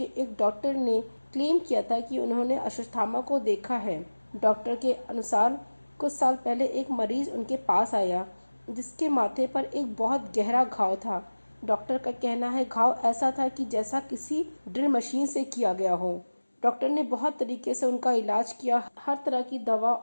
एक डॉक्टर ने क्लेम किया था कि उन्होंने अश्वत्थामा को देखा है। डॉक्टर के अनुसार कुछ साल पहले एक मरीज उनके पास आया जिसके माथे पर एक बहुत गहरा घाव था। डॉक्टर का कहना है घाव ऐसा था कि जैसा किसी ड्रिल मशीन से किया गया हो। डॉक्टर ने बहुत तरीके से उनका इलाज किया, हर तरह की दवा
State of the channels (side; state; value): both; inverted; correlation -1.00